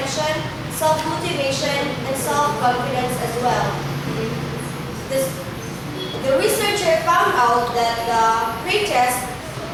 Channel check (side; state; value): both; identical; correlation 1.00